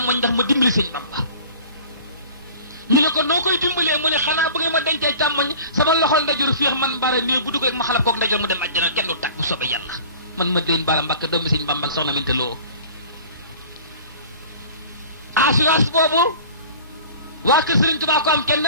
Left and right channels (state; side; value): inverted; both; correlation -0.43